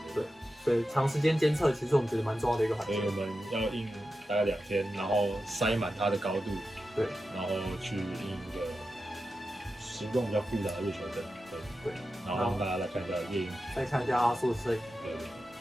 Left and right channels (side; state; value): both; normal; correlation 0.91